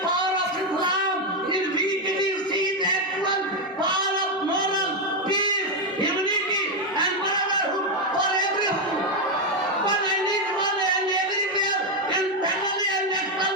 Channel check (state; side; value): normal; both; correlation 0.05